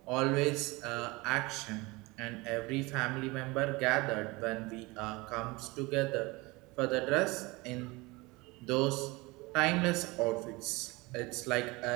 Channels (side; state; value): left; quieter; 23.8 dB